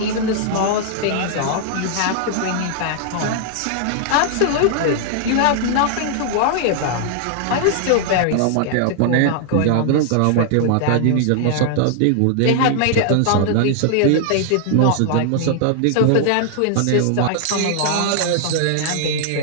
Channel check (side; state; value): both; different; correlation -0.01